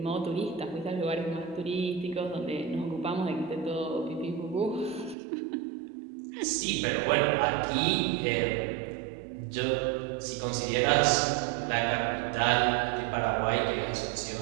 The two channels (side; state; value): left; drops out; at 5.2 s